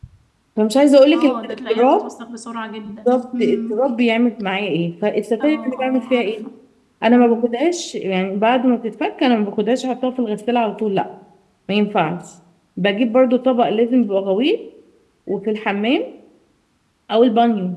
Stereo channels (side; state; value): both; identical; correlation 1.00